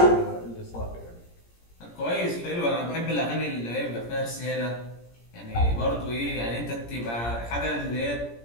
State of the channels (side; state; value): right; late; 17 ms